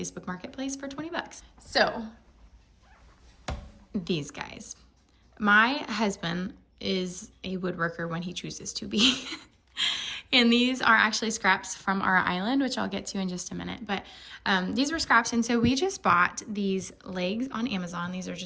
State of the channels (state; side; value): identical; both; correlation 1.00